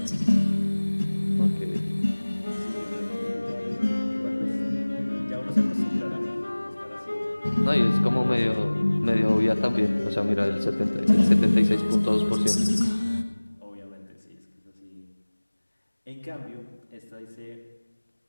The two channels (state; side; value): inverted; both; correlation -1.00